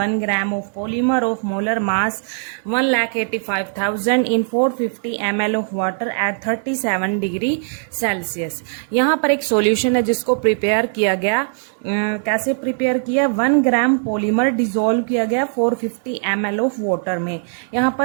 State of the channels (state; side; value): silent; left; digital silence